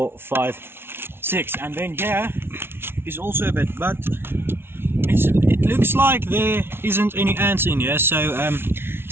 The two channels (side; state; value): left; late; 0.11 ms